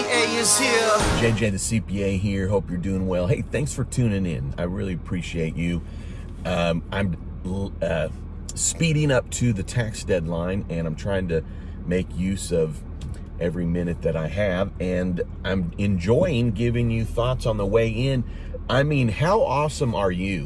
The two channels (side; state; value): both; identical; correlation 1.00